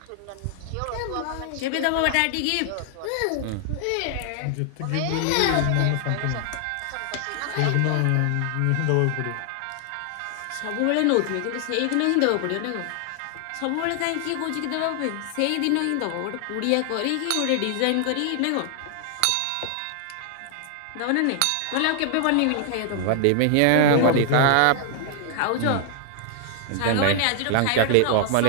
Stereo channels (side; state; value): both; different; correlation 0.00